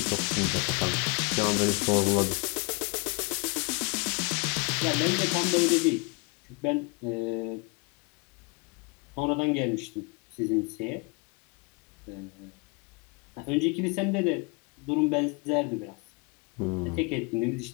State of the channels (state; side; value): quieter; right; 31.4 dB